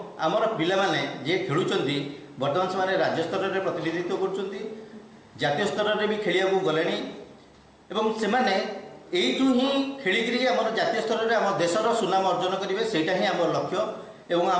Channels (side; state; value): both; identical; correlation 1.00